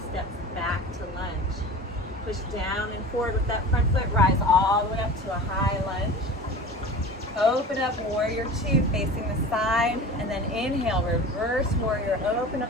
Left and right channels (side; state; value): both; normal; correlation 0.36